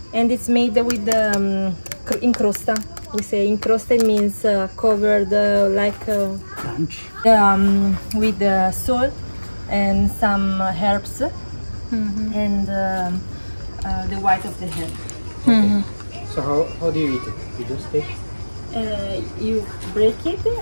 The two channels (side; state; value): both; inverted; correlation -1.00